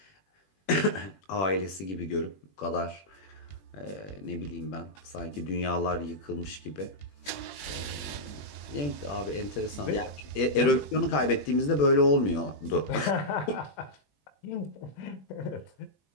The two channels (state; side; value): late; right; 21 ms